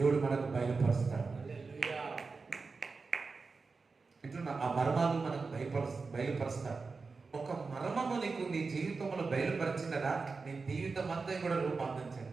మనకు బయలుపరుస్తాడు. ఇట్లా ఆ మర్మాలు మనకు బయలుపరుస్తాడు. ఒక మర్మము నీకు నీ జీవితంలో బయలుపరిచినదా నీ జీవితం అంతా కూడా రూపాంతరం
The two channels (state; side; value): quieter; left; 4.4 dB